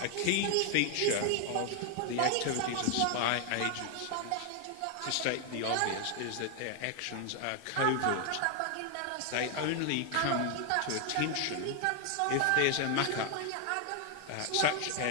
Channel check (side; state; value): both; different; correlation 0.00